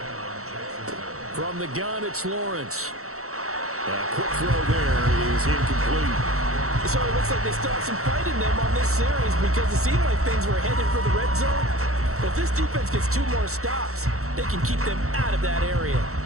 From the gun, it's Lawrence. A quick throw there is incomplete. So it looks like they still have some fight in them on this series because it seemed like things were headed for the red zone. But if this defense gets 2 more stops, they can keep them out of that area.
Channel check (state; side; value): late; left; 0.64 ms